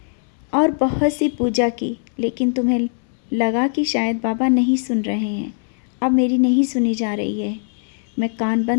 और बहुत सी पूजा की, लेकिन तुम्हें लगा कि शायद बाबा नहीं सुन रहे हैं, अब मेरी नहीं सुनी जा रही है। मैं कान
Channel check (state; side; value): silent; right; 65 dB below the other